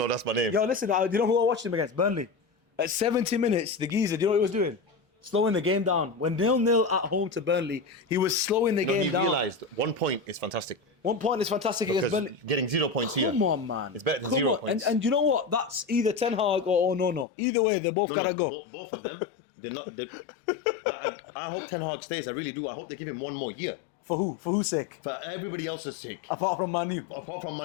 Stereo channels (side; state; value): right; drops out; at 17.2 s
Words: that's my name. Yo, listen, do you know who I watched him against? Burnley. At 70 minutes, the geezer, do you know what he was doing? Slowing the game down. When 0-0 at home to Burnley, he was slowing the game down. He realised 1 point is fantastic. 1 point is fantastic against Burnley. Getting 0 points here. Come on, man. It's better than 0 points. And you know what? That's either Ten Hag or no. Either way, they both gotta go. Both of them. They're not. I hope Ten Hag stays. I really do. I hope they give him 1 more year. For who? For whose sake? For everybody else's sake. Apart from Man U. Apart from